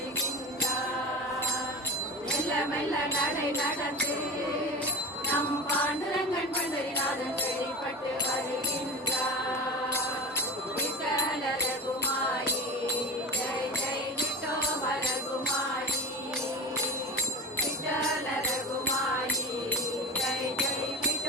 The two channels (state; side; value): normal; both; correlation 0.28